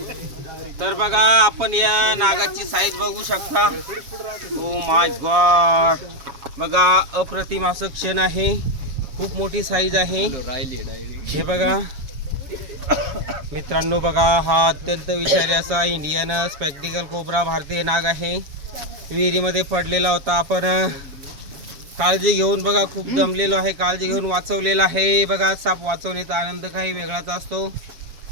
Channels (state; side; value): late; left; 7.2 ms